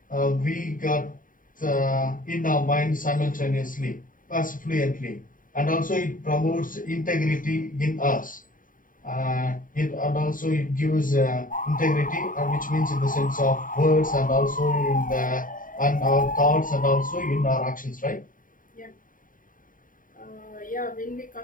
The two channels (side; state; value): right; late; 0.39 ms